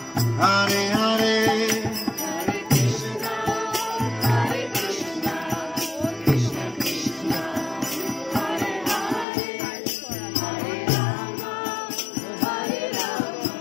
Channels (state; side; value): drops out; right; at 9.2 s